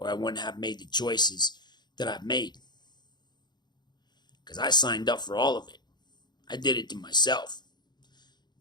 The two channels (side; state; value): right; late; 0.21 ms